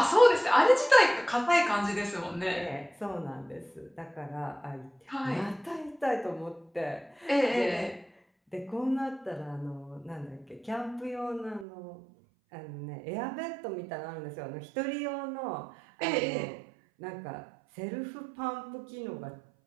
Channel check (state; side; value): drops out; left; at 11.7 s